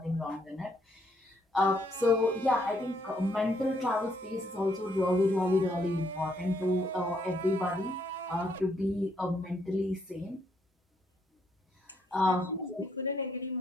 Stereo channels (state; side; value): normal; both; correlation 0.72